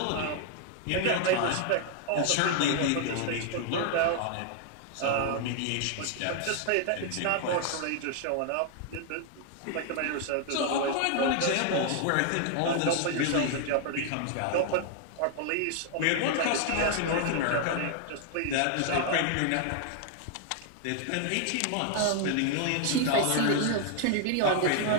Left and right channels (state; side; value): different; both; correlation 0.00